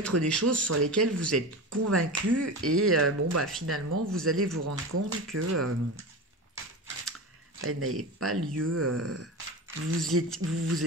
des choses sur lesquelles vous êtes convaincu et bon bah finalement vous allez vous rendre compte que elle n'avait pas lieu. Vous vous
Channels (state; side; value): normal; both; correlation 0.26